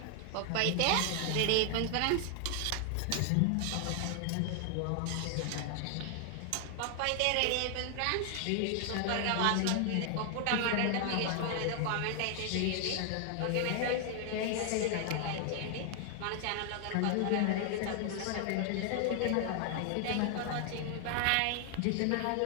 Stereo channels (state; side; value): different; both; correlation 0.00